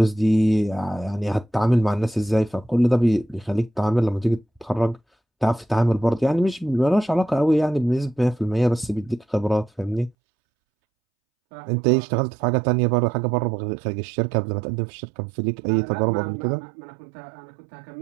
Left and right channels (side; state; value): left; drops out; at 10.2 s